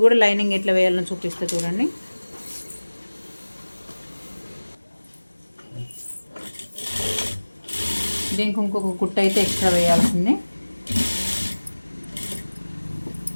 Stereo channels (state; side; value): inverted; both; correlation -1.00